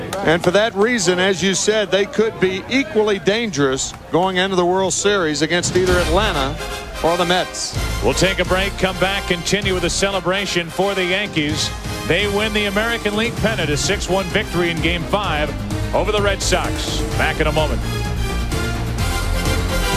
And for that reason, as you said, they could be equally dangerous going into the World Series against either Atlanta or the Mets. We'll take a break, come back, continue with a celebration for the Yankees. They win the American League pennant, a 6-1 victory in Game 5 over the Red Sox. Back in a moment.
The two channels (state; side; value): identical; both; correlation 1.00